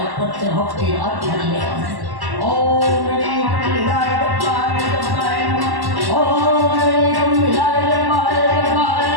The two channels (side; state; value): left; late; 1.1 ms